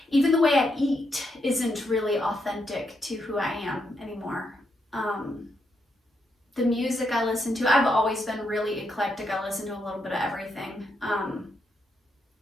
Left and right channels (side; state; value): both; normal; correlation 0.80